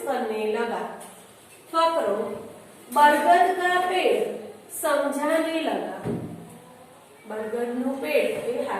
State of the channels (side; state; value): both; identical; correlation 1.00